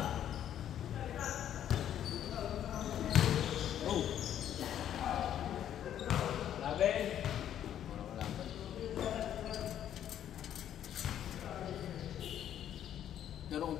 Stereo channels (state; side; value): quieter; right; 10.5 dB